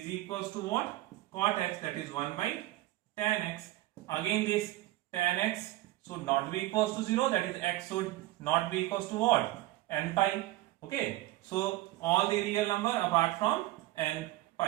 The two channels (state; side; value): quieter; left; 16.9 dB